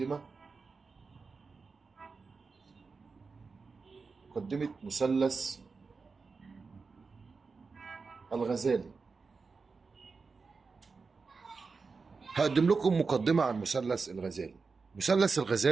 مثلث الغزالي. هقدم لكم مقدمة عن مثلث الغزالي. مثلث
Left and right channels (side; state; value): left; quieter; 4.6 dB